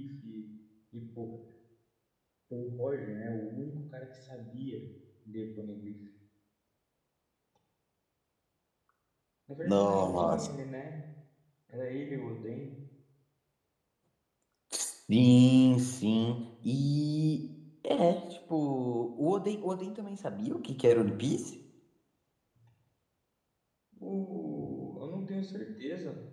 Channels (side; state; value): both; identical; correlation 1.00